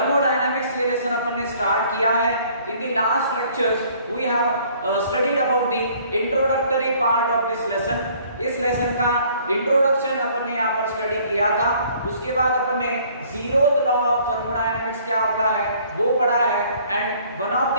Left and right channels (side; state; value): both; inverted; correlation -0.58